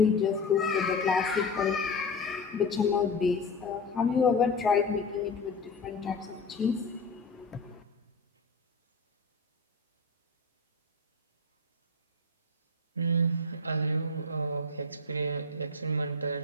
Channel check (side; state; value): right; quieter; 3.3 dB